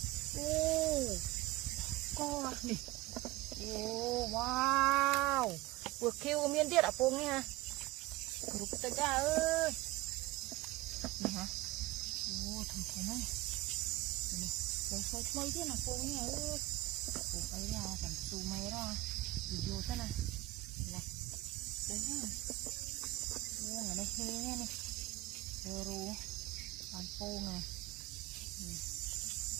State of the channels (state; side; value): quieter; left; 19.2 dB